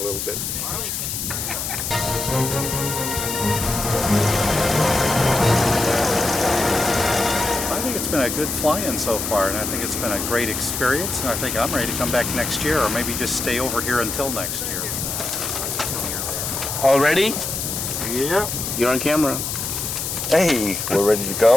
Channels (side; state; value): left; noise; hiss, 3 dB below the sound